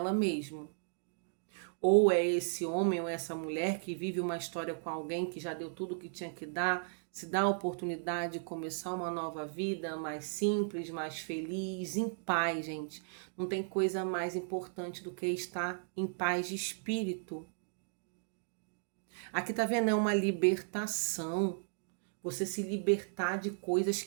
mesma. Ou é esse homem ou essa mulher que vive uma história com alguém que já deu tudo o que tinha que dar, se dá a oportunidade de começar uma nova vida mais simples, mais feliz, em paz, gente. Não tem coisa mais importante do que estar em paz de espírito. Aqui tá vendo, é uma libertação. Você se libertar de coisas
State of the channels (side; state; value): left; silent; digital silence